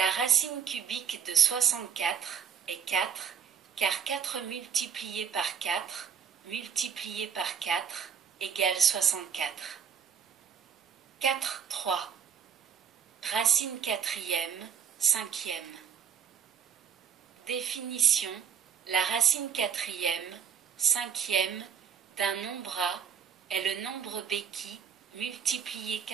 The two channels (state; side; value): quieter; left; 7.8 dB